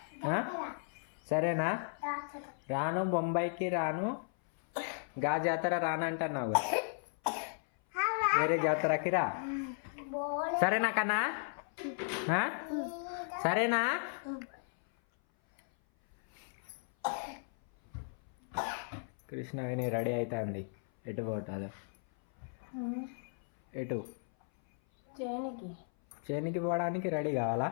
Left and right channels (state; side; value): silent; right; 54 dB below the other